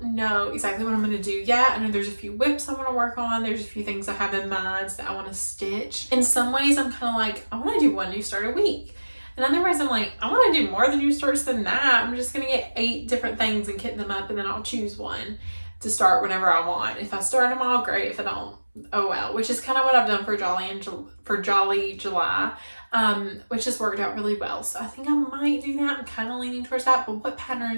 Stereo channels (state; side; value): inverted; both; correlation -1.00